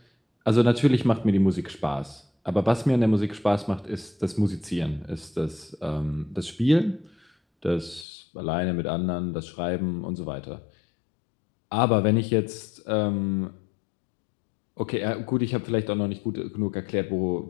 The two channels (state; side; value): drops out; right; at 8.1 s